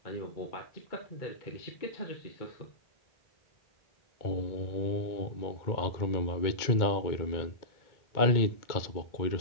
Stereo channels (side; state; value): right; late; 2.1 ms